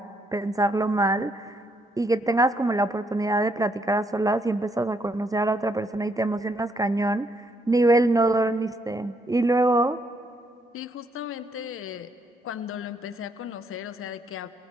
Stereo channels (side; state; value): both; normal; correlation 0.73